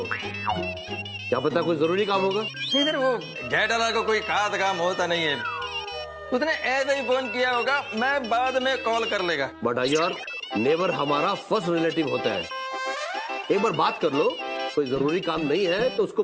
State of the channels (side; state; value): both; identical; correlation 1.00